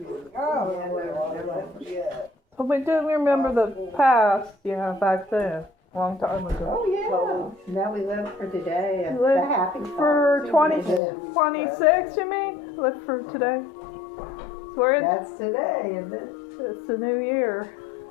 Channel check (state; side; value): drops out; right; at 11.0 s